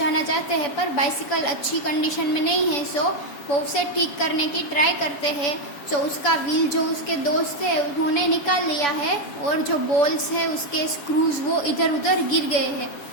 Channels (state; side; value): late; right; 7.0 ms